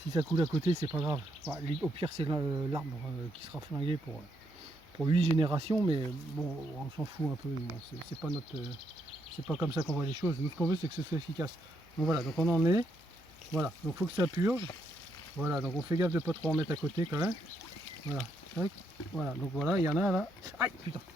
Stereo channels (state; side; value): normal; both; correlation 0.77